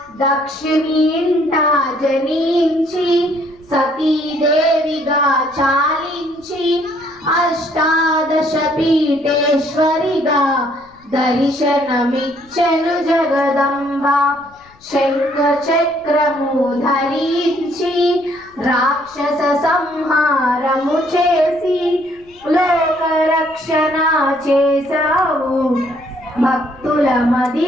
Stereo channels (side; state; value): left; noise; rumble, 29 dB below the sound